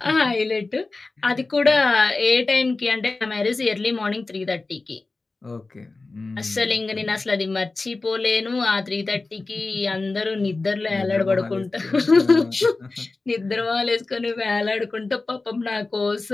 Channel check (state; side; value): quieter; right; 3.5 dB